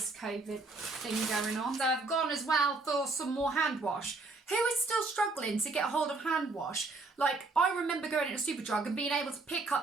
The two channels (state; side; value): quieter; left; 3.5 dB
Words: COVID thing going on. So I've gone as well for some more hand wash. Who is still struggling to get a hold of hand wash? Like, I remember going into Superdrug and being able to pick